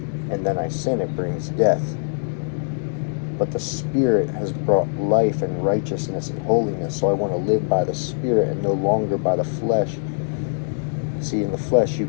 and then I sin, it brings death. But the Spirit has brought life and righteousness and holiness. So I want to live by the Spirit and no longer by the flesh. See, in the flesh, you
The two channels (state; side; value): silent; right; digital silence